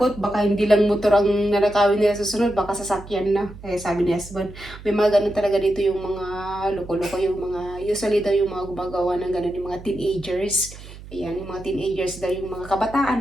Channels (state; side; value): noise; right; hum, 16 dB below the sound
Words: baka hindi lang motor ang nanakawin nila susunod, baka sasakyan na. Kaya sabi ni husband, may mga ganun talaga dito yung mga loko-loko, yung mga, usually daw yung mga gumagawa ng ganun, yung mga teenagers. Ayan, yung mga teenagers daw, yung mga